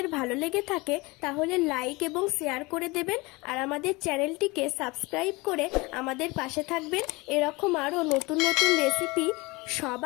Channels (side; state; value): right; quieter; 24.0 dB